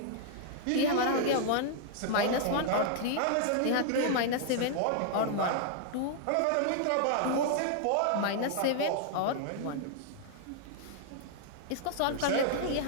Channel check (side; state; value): both; different; correlation -0.01